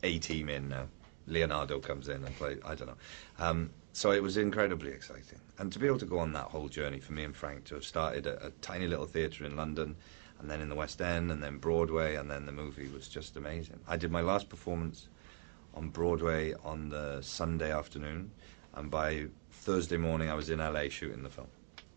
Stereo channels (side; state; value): left; silent; 51 dB below the other